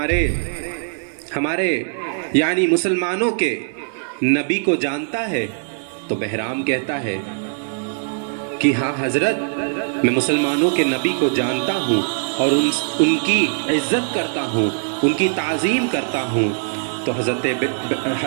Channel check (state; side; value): silent; left; 65 dB below the other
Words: ہمارے یعنی مسلمانوں کے نبی کو جانتا ہے؟ تو بہرام کہتا ہے کہ ہاں حضرت، میں مسلمانوں کے نبی کو جانتا ہوں اور ان کی عزت کرتا ہوں، ان کی تعظیم کرتا ہوں۔ تو حضرت